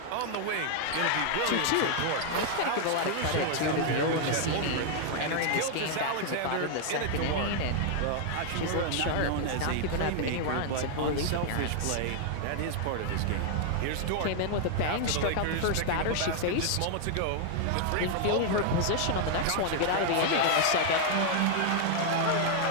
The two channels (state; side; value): different; both; correlation 0.00